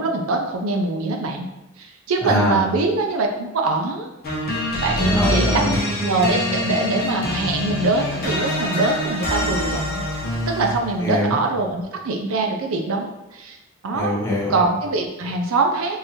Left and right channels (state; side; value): normal; both; correlation 0.18